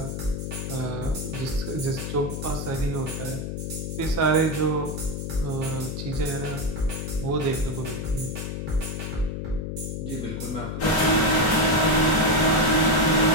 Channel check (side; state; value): left; noise; hum, 5 dB below the sound